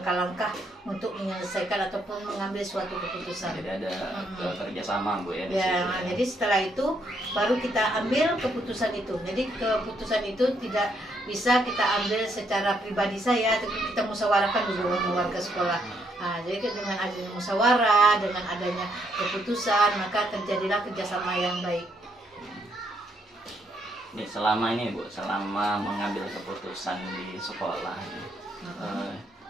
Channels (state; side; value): normal; both; correlation 0.73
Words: untuk menyelesaikan ataupun mengambil suatu keputusan. Jadi ada kerjasama, Bu, ya? Jadi setelah itu baru kita ambil keputusan itu. Jadi keputusan itu tidak bisa kita ambil secara pribadi saya, tapi kita musyawarahkan dulu dengan warga sekolah. Jadi dengan adanya musyawarah, dengan adanya keputusan, maka terjadilah kerjasama yang baik. Nih, selama ini, Bu, selama mengambil keputusan di sekolah,